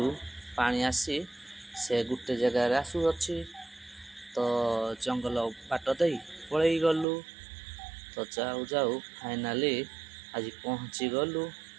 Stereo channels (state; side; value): drops out; left; at 7.1 s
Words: पानी आसी से गोटे जगार आसुअछि। तो जंगल बाट दे पलई गलु तो जाऊ जाऊ फाइनाली आज पहुँची गलु